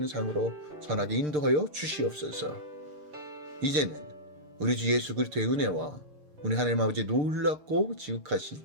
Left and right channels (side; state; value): left; late; 6.7 ms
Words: 삶으로 선하게 인도하여 주시옵소서. 이제는 우리 주 예수 그리스도의 은혜와 우리 하나님 아버지의 놀랍고 지극하신